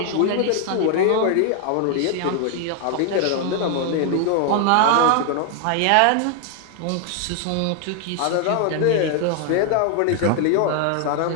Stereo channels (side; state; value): both; different; correlation 0.00